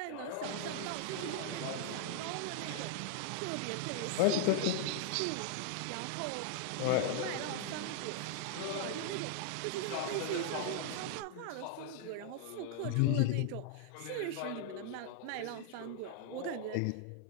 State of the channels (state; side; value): different; both; correlation -0.01